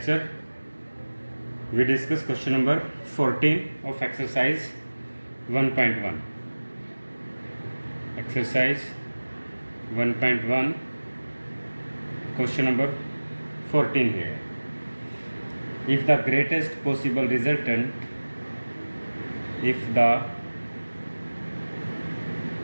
we discuss question number 14 of exercise 1.1. Exercise 1.1, question number 14 here. If the greatest possible resultant,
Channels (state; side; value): inverted; both; correlation -1.00